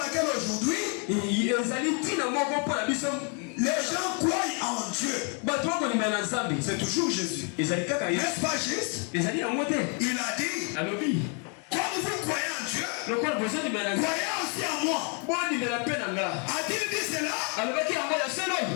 aujourd'hui, les gens croient en Dieu. C'est toujours Jésus. N'est-ce pas juste? Il a dit, comme vous croyez en Dieu, croyez aussi en moi. A-t-il dit cela?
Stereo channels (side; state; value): right; quieter; 38.3 dB